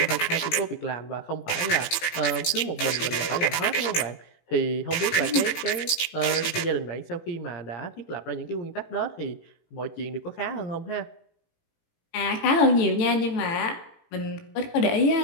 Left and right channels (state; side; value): late; right; 18 ms